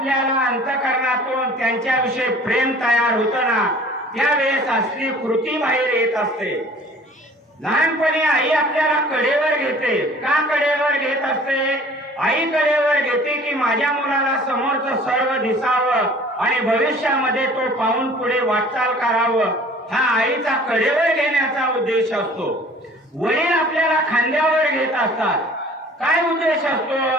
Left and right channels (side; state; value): both; normal; correlation 0.49